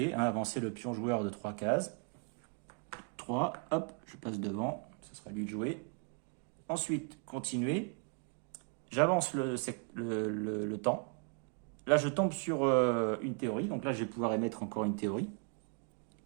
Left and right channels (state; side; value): quieter; left; 36.8 dB